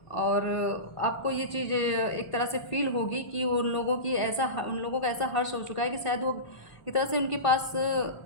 और आपको ये चीज़ एक तरह से फील होगी कि उन लोगों का ऐसा हर्ष हो चुका है कि शायद वो एक तरह से उनके पास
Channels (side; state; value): right; late; 1.5 ms